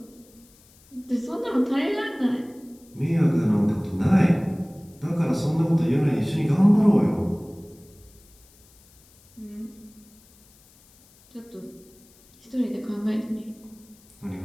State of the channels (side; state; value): left; noise; hiss, 28 dB below the sound